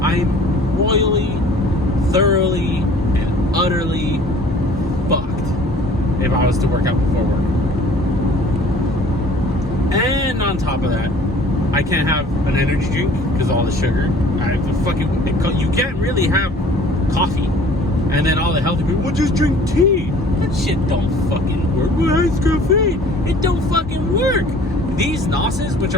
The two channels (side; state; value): both; normal; correlation 0.51